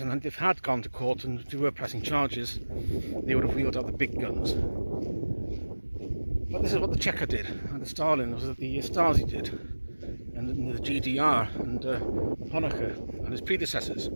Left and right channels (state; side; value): inverted; both; correlation -1.00